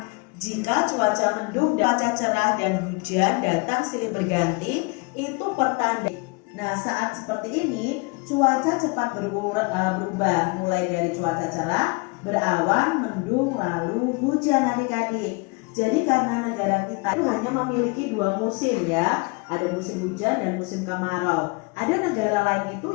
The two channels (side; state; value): right; quieter; 29.3 dB